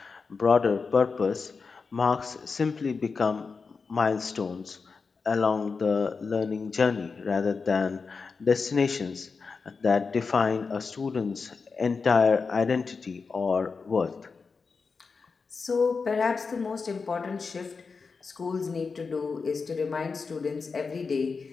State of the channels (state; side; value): quieter; right; 4.8 dB